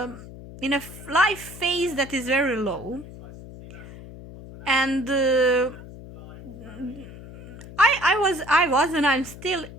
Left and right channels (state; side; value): noise; left; hum, 15 dB below the sound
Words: life phase that is very low, and I was and I'm still